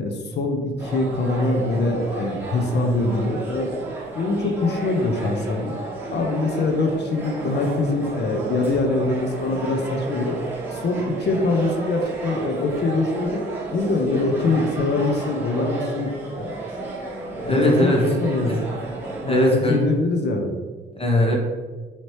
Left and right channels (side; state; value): both; normal; correlation 0.54